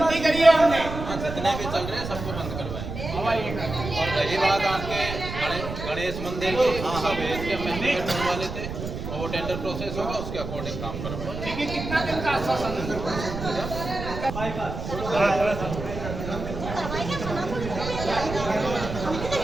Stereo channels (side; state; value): right; noise; rumble, 7 dB below the sound